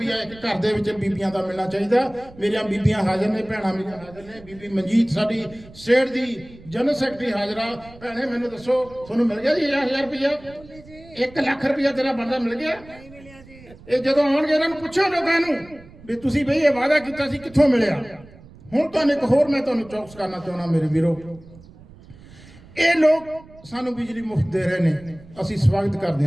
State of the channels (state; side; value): noise; right; rumble, 21 dB below the sound